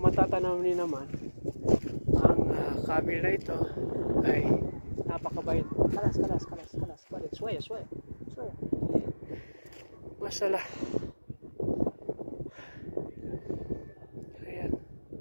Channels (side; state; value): both; inverted; correlation -1.00